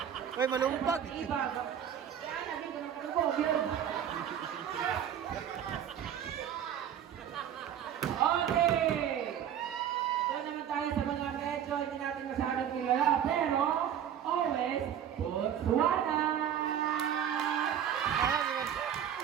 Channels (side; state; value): left; quieter; 9.5 dB